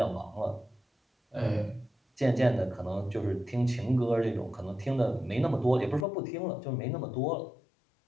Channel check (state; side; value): drops out; right; at 6.1 s